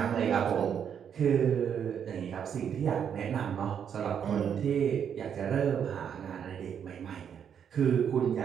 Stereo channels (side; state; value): left; quieter; 8.1 dB